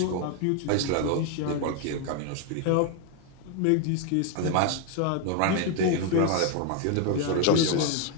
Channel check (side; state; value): both; different; correlation 0.01